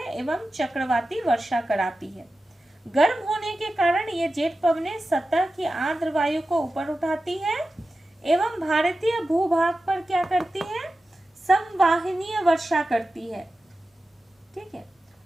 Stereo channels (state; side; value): normal; both; correlation 0.93